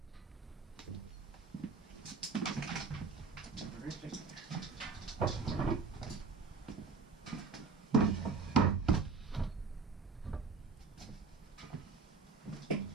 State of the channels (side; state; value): left; quieter; 4.7 dB